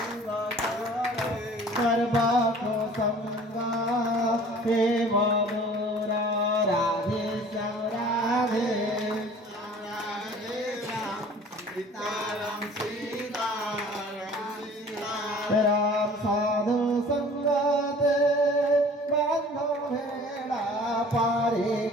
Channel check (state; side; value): normal; both; correlation 0.48